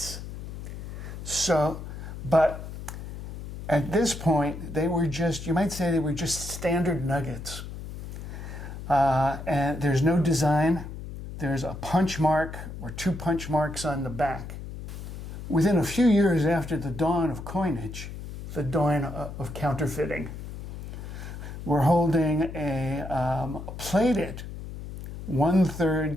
But at this point, they were just, you might say they were just standard nuggets. And there's no design. There's a punch mark or 2 punch marks on the back. Within a few years after the dawn of coinage, the dawn of counterfeiting, we're holding a plated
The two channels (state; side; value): noise; left; hum, 10 dB below the sound